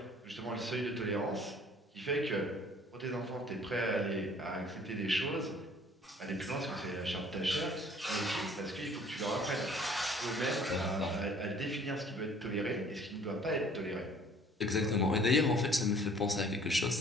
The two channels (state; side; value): normal; both; correlation 0.54